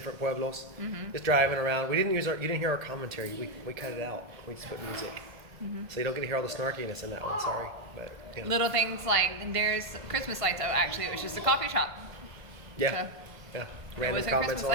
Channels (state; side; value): late; left; 1.5 ms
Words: pueblos, just driving around. We didn't you didn't hear our commentary. We cut it out. We just put music, so you don't get to hear all the snarkiness in that one. Sorry, but you know. Little things like there's Christmas lights. Oh, actually, it was just a coffee shop. Yeah. Yeah. Random wasn't comments Christmas